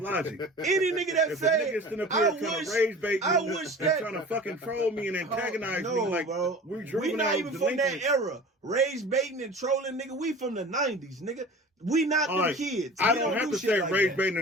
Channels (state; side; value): normal; both; correlation 0.39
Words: logic. Any nigga that say, I wish that trying to fucking troll me and antagonize me. Like, bro, we not even from that era. Rage baiting and trolling, nigga. We from the 90s, nigga. We not them kids. I don't have to say rage baiting